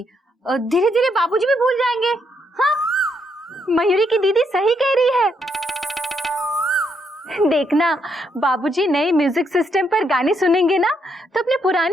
धीरे धीरे बाबूजी भी भूल जाएंगे। हाँ, मयूरी की दीदी सही कह रही है। देखना, बाबूजी नए म्यूजिक सिस्टम पर गाने सुनेंगे ना तो अपने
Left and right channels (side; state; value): both; normal; correlation 0.76